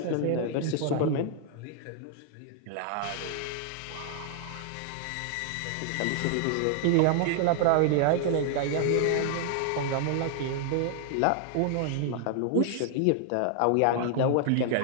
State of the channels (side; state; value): both; different; correlation -0.01